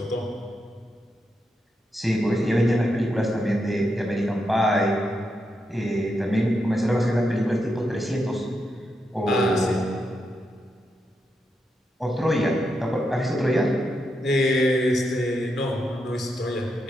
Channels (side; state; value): both; normal; correlation 0.84